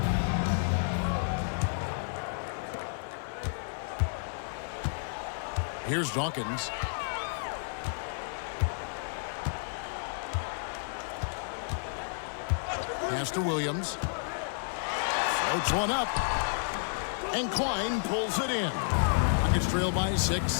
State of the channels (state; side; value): silent; right; digital silence